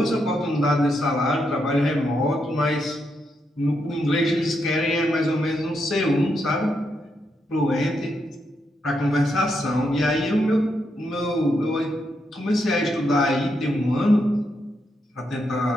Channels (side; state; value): both; normal; correlation 0.81